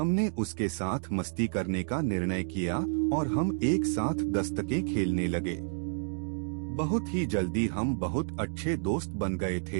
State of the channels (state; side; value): silent; left; digital silence